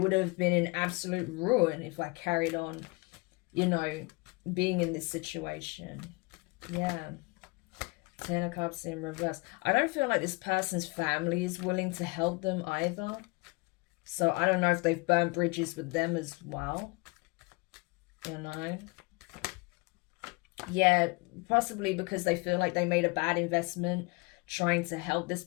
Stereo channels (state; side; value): quieter; right; 27.5 dB